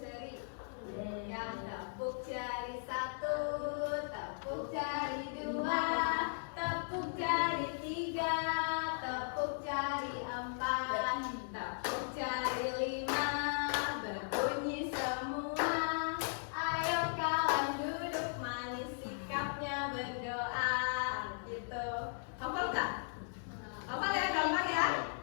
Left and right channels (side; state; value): right; silent; 53 dB below the other